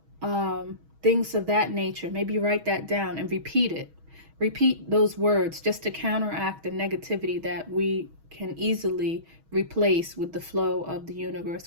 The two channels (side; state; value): left; late; 6.3 ms